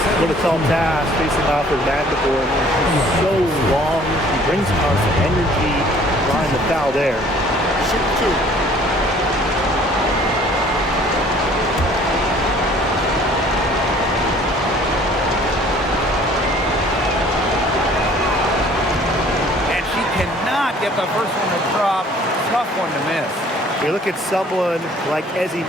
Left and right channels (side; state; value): both; normal; correlation 0.54